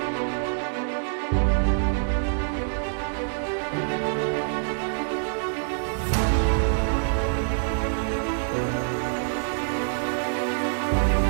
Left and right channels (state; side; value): silent; left; digital silence